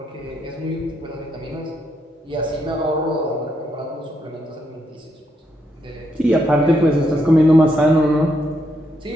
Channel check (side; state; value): both; normal; correlation 0.78